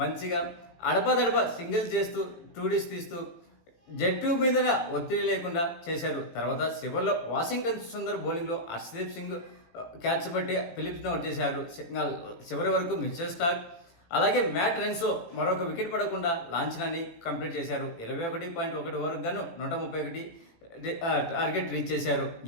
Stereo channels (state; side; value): late; right; 18 ms